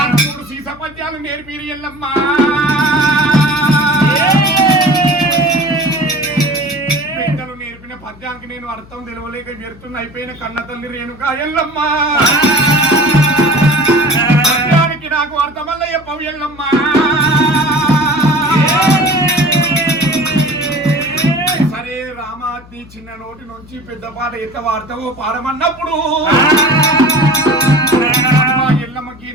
మూడు సీస పద్యాలు నేర్పిరి ఎల్లమ్మ పెద్దలు నేర్పిన పద్యానికి నేను అర్థం తెలవలేక వ్యర్థం అయిపోయిన కన్న తల్లి రేణుకా ఎల్లమ్మ పద్యానికి నాకు అర్థమల్ల చెప్పవు ఎల్లమ్మ సరే రామాతి చిన్న నోటి నుంచి పెద్ద పాట ఎట్లా వాడతావో పాడమన్నప్పుడు ఎల్లమ్మకి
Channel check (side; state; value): left; noise; hum, 22 dB below the sound